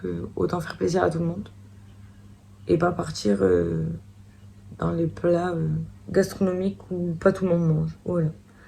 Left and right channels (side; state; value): both; identical; correlation 1.00